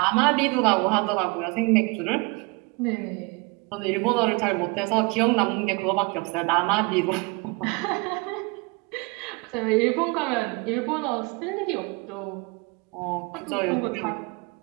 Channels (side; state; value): left; quieter; 27.9 dB